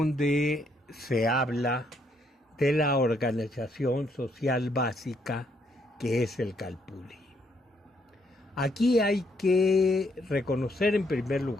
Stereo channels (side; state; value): both; normal; correlation 0.72